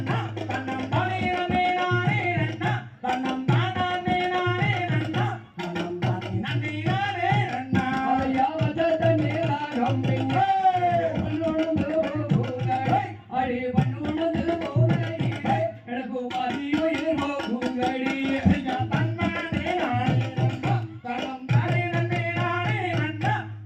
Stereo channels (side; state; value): both; identical; correlation 1.00